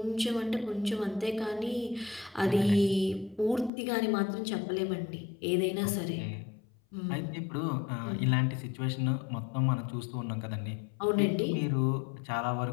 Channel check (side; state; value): right; drops out; at 3.7 s